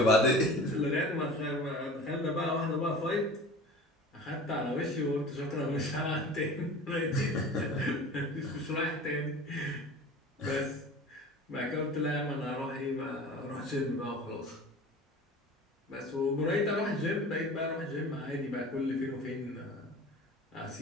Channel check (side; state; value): both; normal; correlation 0.38